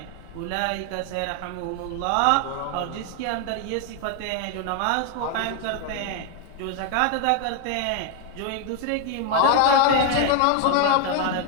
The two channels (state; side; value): different; both; correlation 0.01